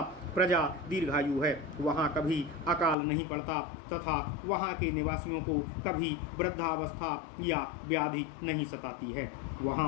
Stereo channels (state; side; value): drops out; right; at 3.0 s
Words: प्रजा दीर्घायु है। वहाँ कभी अकाल नहीं पड़ता तथा वहाँ के निवासियों को कभी वृद्धावस्था या व्याधि नहीं सताती है।